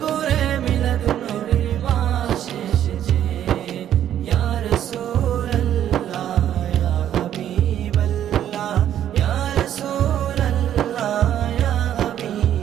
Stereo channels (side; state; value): left; quieter; 10.8 dB